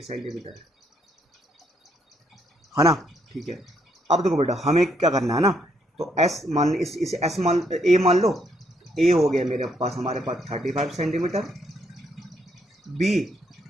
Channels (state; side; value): normal; both; correlation 0.73